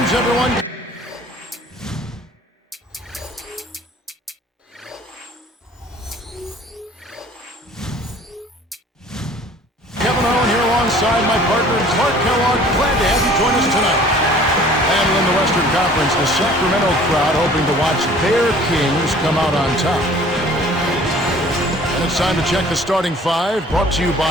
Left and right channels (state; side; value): normal; both; correlation 0.51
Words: Greetings, everyone. Kevin Owen here alongside my partner, Clark Kellogg. Glad to have you join us tonight. And in the Western Conference, the Sacramento crowd hoping to watch their Kings come out on top. And it's time to check the starting five, brought to you